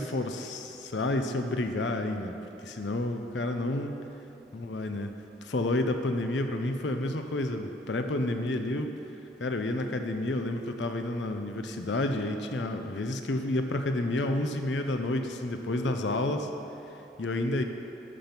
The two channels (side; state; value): both; normal; correlation 0.58